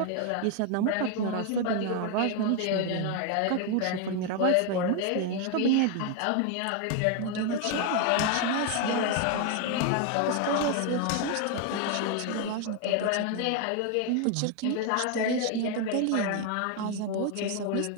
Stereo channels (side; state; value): both; different; correlation 0.01